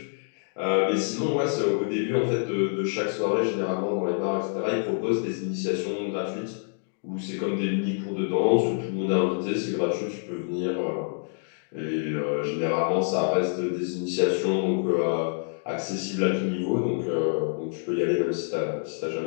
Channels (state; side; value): silent; right; digital silence